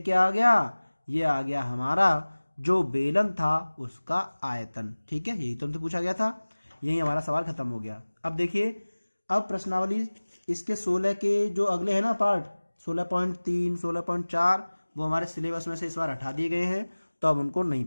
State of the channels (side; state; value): both; inverted; correlation -1.00